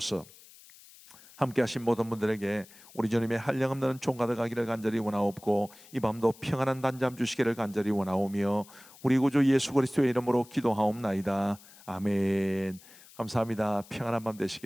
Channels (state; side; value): noise; left; hiss, 22 dB below the sound